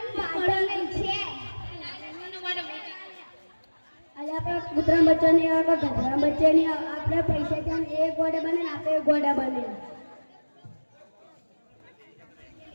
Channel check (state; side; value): inverted; both; correlation -1.00